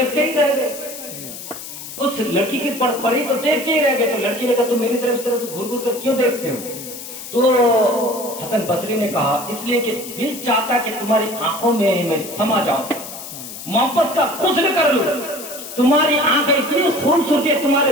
ہی رہ گئے. اس لڑکی کی پر پڑی تو دیکھتے ہی رہ گئے. تو لڑکی نے کہا تم میری طرف اس طرح سے گھر گھر کر کیوں دیکھتے ہو؟ تو حسن بصری نے کہا اس لیے کہ دل چاہتا کہ تمہاری آنکھوں میں میں سما جاؤں, محبت کا غسل کر لوں. تمہاری آنکھیں اتنی خوبصورت ہے, تمہارے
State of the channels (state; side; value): noise; left; hiss, 11 dB below the sound